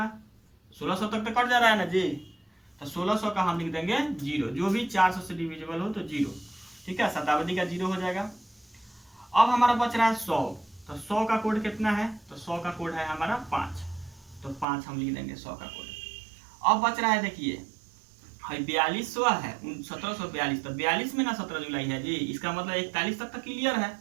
1600 तक तो कट जा रहा है ना जी, तो 1600 का हम लिख देंगे 0, जो भी 400 से डिविजिबल हो तो 0, ठीक है। शताब्दी का 0 हो जाएगा। अब हमारा बच रहा है 100, तो 100 का कोड कितना है, तो 100 का कोड है हमारा 5, तो 5 हम लिख देंगे 100 का कोड। अब बच रहा है देखिए 4200 है, 1742, तो 42 में ना 17 जुलाई है जी, इसका मतलब 41 तक तो क्लियर है,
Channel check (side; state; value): left; drops out; at 14.7 s